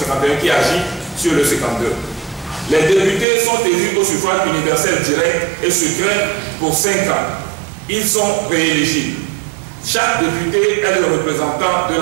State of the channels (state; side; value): drops out; left; at 3.2 s